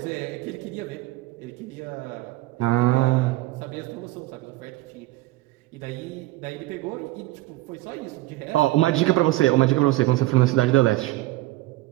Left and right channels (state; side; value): quieter; left; 18.0 dB